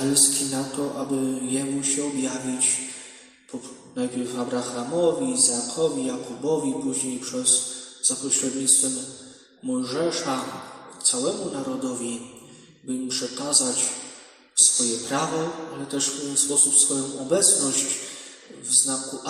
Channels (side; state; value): both; identical; correlation 1.00